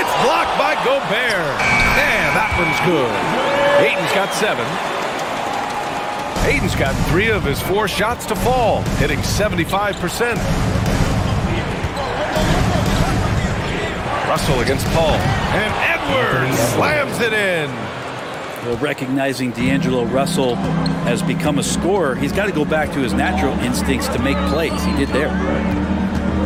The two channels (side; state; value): both; identical; correlation 1.00